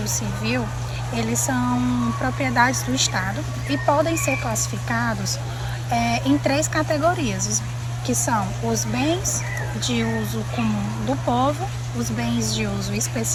Civil, eles são propriedades do Estado e podem ser classificados em 3 categorias, que são os bens de uso comum do povo, os bens de uso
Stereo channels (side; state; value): both; identical; correlation 1.00